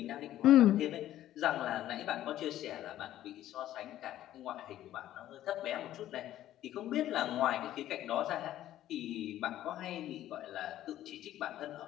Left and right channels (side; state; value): right; quieter; 13.0 dB